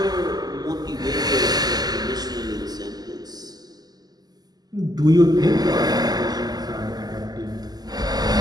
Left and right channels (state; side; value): late; left; 0.19 ms